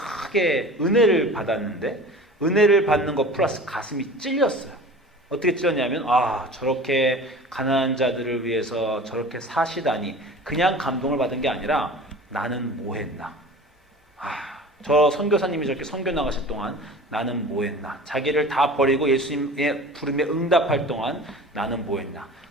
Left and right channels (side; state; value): both; normal; correlation 0.39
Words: 은혜를 받았는데, 은혜를 받는 것 플러스 가슴이 찔렸어요. 어떻게 찔렸냐면 저렇게 가난한 자들을 위해서 저렇게 사시다니, 그냥 감동을 받은 게 아니라 나는 뭐 했나? 저 선교사님이 저렇게 선교 나가실 동안 나는 뭐 했나? 자기를 다 버리고 예수님의 부름에 응답할 동안 나는 뭐 했나?